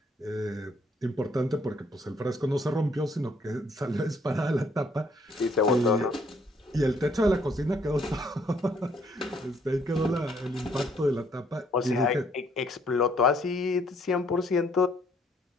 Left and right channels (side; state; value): both; normal; correlation 0.66